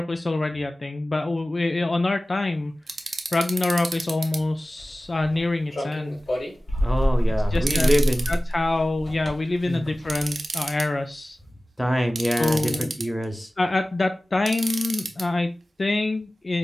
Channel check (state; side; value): normal; both; correlation 0.97